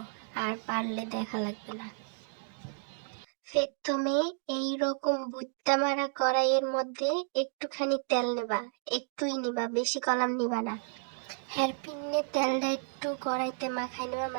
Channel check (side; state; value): left; silent; 57 dB below the other